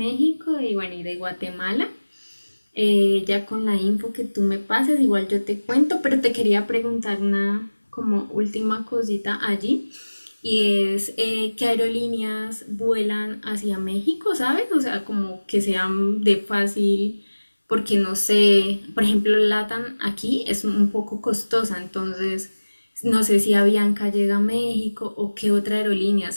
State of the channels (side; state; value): both; inverted; correlation -1.00